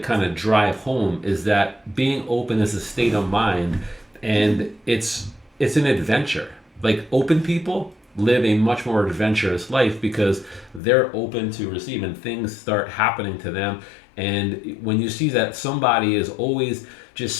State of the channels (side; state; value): right; drops out; at 10.8 s